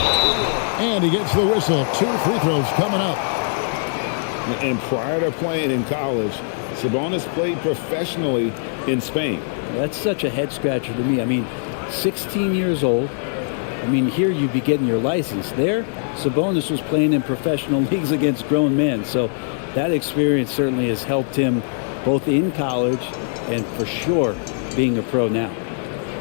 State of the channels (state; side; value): silent; right; digital silence